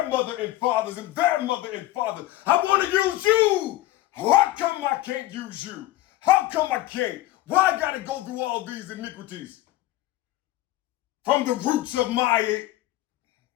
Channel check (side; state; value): right; quieter; 16.2 dB